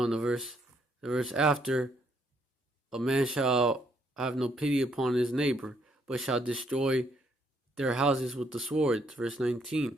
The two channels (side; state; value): both; normal; correlation 0.71